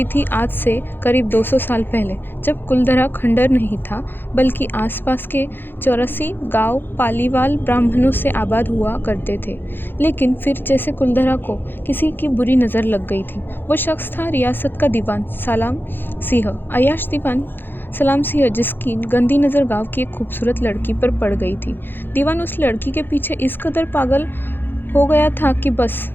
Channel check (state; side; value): late; right; 0.098 ms